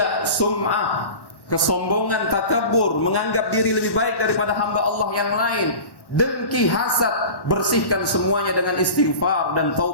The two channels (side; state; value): right; late; 1.1 ms